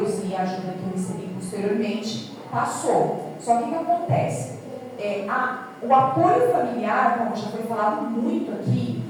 e a ajuda que eu recebi posteriormente, passou. Só que o que acontece? O apoio familiar, como já foi falado muito aqui,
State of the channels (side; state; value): both; identical; correlation 1.00